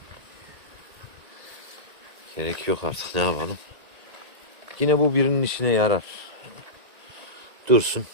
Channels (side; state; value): left; late; 1.9 ms